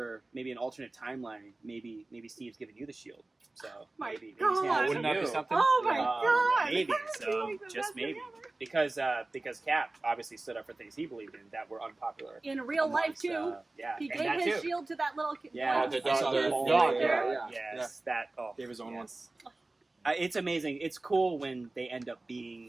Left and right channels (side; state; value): left; quieter; 3.0 dB